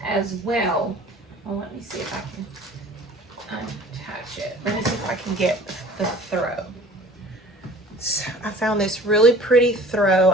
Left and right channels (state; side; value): normal; both; correlation 0.47